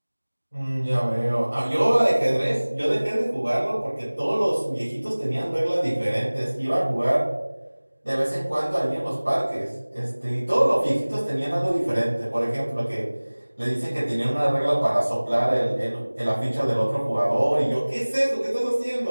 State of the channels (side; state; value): both; inverted; correlation -1.00